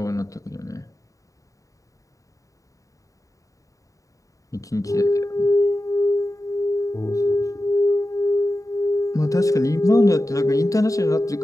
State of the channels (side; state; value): right; late; 0.16 ms